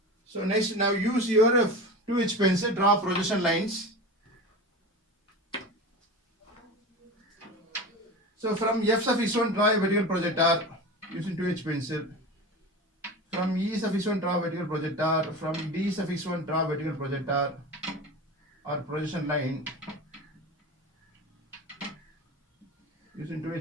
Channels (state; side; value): normal; both; correlation 0.29